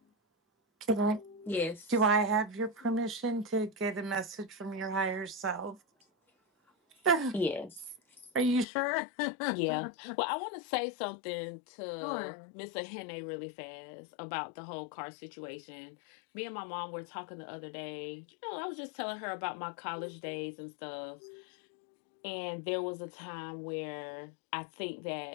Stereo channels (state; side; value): drops out; right; at 8.7 s